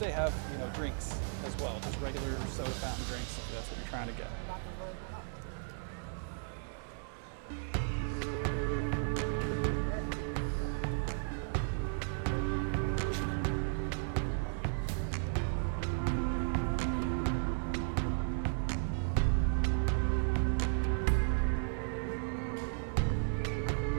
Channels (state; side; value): silent; left; digital silence